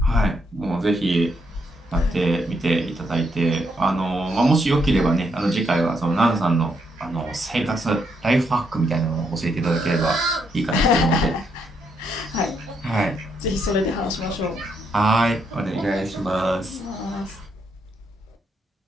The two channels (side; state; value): both; normal; correlation 0.77